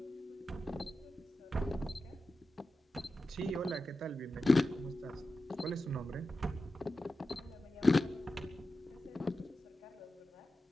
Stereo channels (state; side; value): normal; both; correlation 0.92